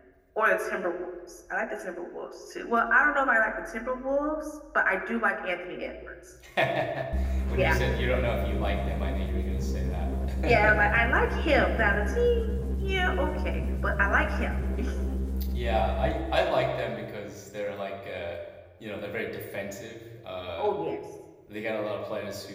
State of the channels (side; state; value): both; identical; correlation 1.00